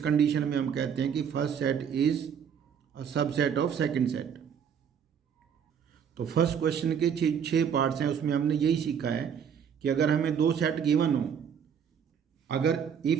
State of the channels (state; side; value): quieter; left; 7.7 dB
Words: में हम कहते हैं कि first set is a subset of second set. तो फर्स्ट क्वेश्चन के छः पार्ट्स हैं, उसमें हमने यही सीखा है कि अगर हमें दो सेट गिवन हो, अगर